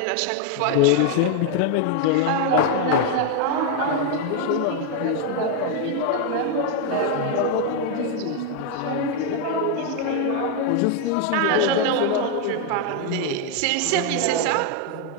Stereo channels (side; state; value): both; different; correlation 0.01